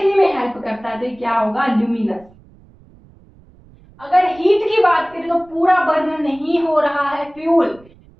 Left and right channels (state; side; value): noise; right; rumble, 26 dB below the sound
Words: में हेल्प करता है, तो क्या होगा? ल्यूमिनस। अगर हीट की बात करें तो पूरा बर्न नहीं हो रहा है फ्यूल,